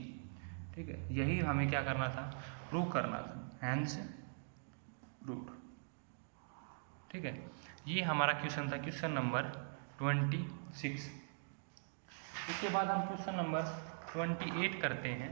ठीक है, यही हमें क्या करना था, प्रूव करना था, हैंस प्रूव्ड। ठीक है, ये हमारा क्वेश्चन था, क्वेश्चन नंबर 26। इसके बाद हम क्वेश्चन नंबर 28 करते हैं।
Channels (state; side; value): silent; left; digital silence